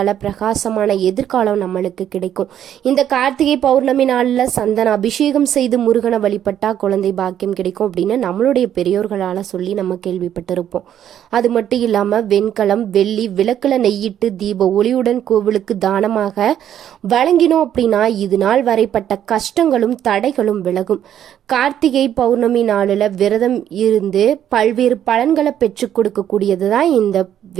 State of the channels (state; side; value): quieter; left; 10.4 dB